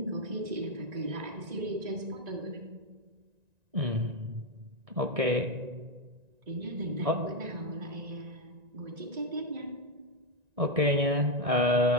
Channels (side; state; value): left; late; 1.9 ms